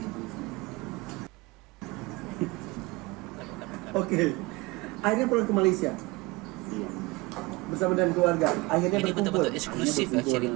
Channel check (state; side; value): quieter; left; 23.3 dB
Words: Oke. Akhirnya pulang ke Malaysia Iya. bersama dengan keluarga. Akhirnya Ini berkumpul. betul-betul eksklusif ya Berkumpul cerita